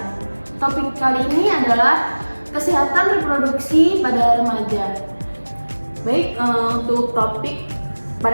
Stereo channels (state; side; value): inverted; both; correlation -1.00